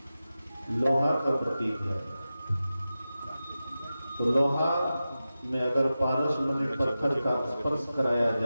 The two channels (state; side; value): inverted; both; correlation -0.94